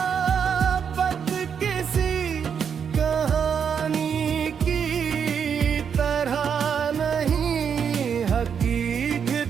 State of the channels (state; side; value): quieter; left; 7.2 dB